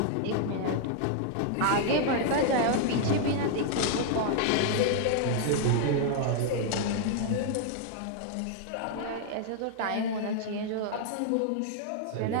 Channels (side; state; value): both; different; correlation -0.01